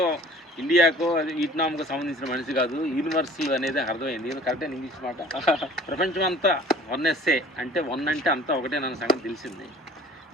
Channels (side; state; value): both; normal; correlation 0.48